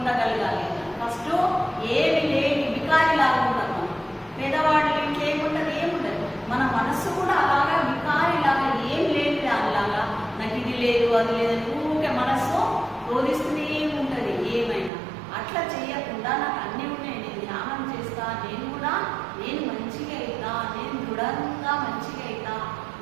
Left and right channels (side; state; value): left; drops out; at 14.9 s